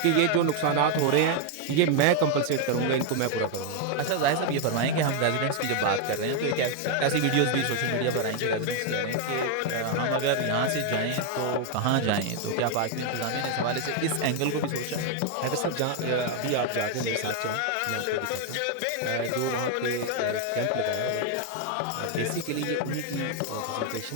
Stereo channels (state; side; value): different; both; correlation 0.00